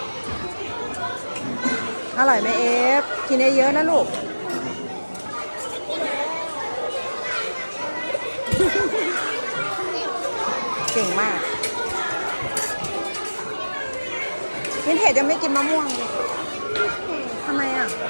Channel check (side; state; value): both; inverted; correlation -1.00